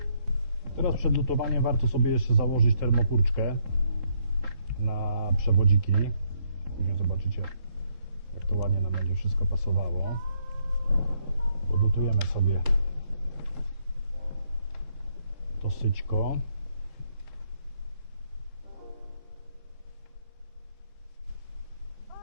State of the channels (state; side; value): late; left; 3.7 ms